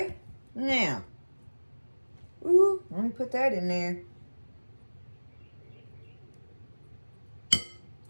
now, ooh, let me put that in there.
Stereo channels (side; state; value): both; inverted; correlation -1.00